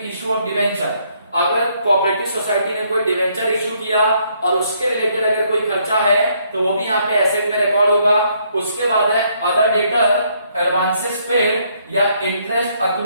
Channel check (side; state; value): both; inverted; correlation -0.70